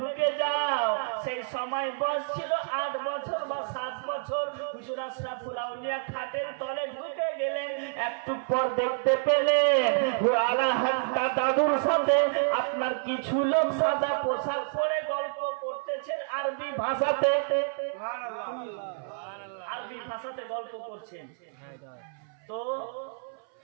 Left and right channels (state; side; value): silent; left; 59 dB below the other